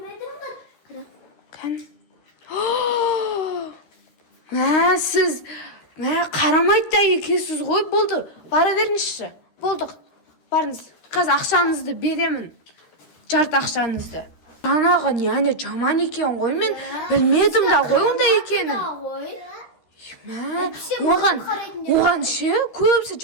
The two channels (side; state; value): right; late; 13 ms